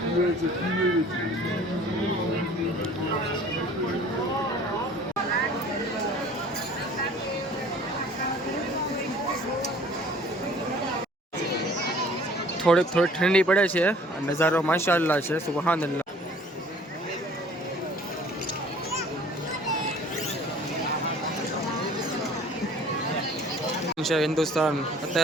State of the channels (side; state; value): both; normal; correlation 0.51